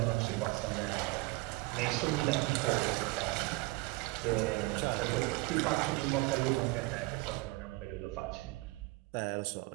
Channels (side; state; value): left; quieter; 23.8 dB